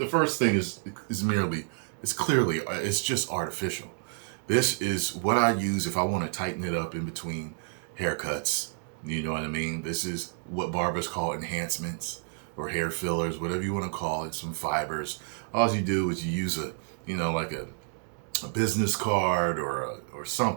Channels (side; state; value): left; silent; digital silence